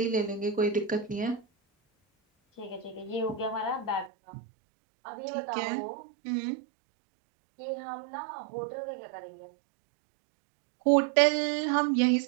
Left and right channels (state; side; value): drops out; left; at 4.1 s